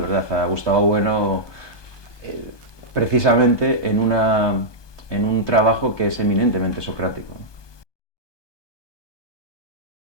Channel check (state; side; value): late; right; 1.2 ms